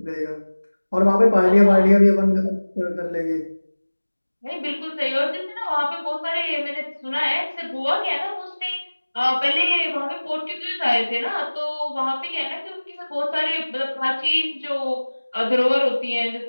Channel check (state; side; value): inverted; both; correlation -1.00